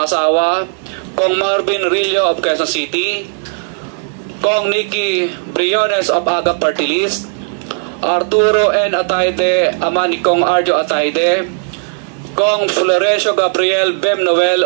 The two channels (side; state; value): left; silent; 57 dB below the other